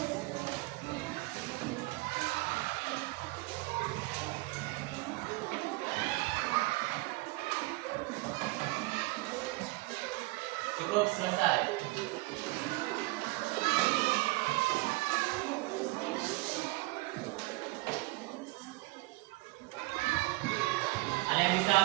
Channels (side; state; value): left; quieter; 22.8 dB